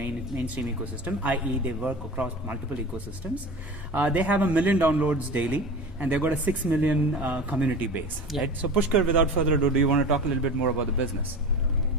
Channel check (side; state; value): both; normal; correlation 0.32